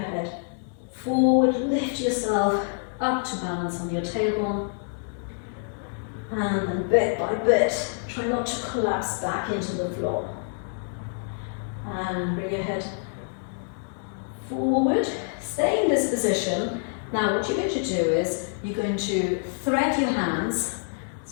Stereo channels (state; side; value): silent; right; digital silence